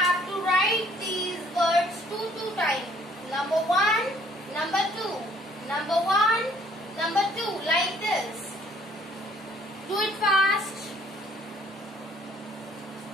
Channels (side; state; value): both; normal; correlation 0.61